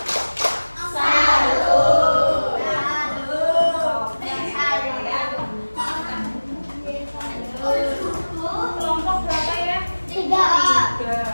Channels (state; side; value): inverted; both; correlation -1.00